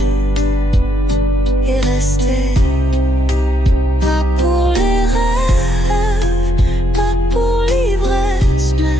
et rester. Pas pour les rêves, pas pour l'ivresse, mais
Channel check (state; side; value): normal; both; correlation 0.75